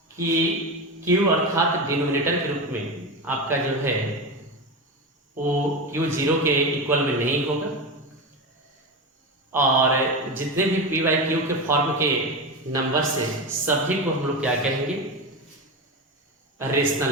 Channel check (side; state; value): both; normal; correlation 0.20